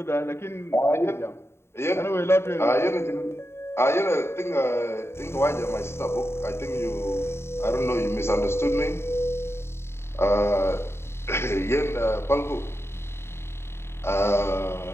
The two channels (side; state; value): right; late; 0.12 ms